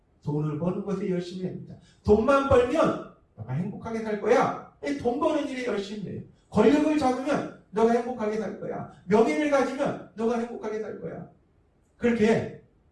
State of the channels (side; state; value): both; identical; correlation 1.00